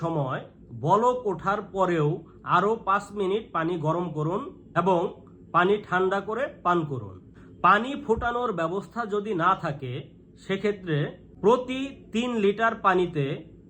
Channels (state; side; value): identical; both; correlation 1.00